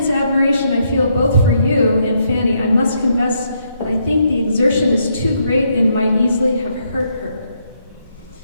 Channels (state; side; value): inverted; both; correlation -0.76